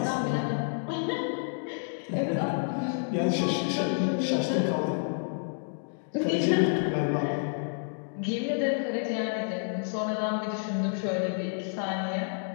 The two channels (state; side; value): silent; right; digital silence